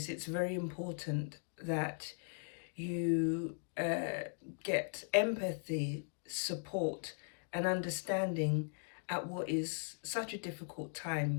it's very important that you get empathy, support, and understanding at what is such a difficult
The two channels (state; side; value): silent; right; digital silence